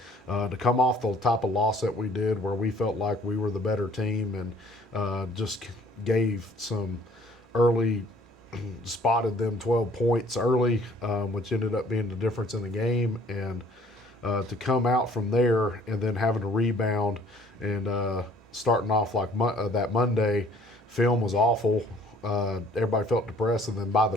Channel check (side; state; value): both; normal; correlation 0.56